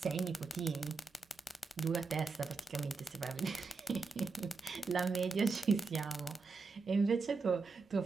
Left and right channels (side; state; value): left; quieter; 4.3 dB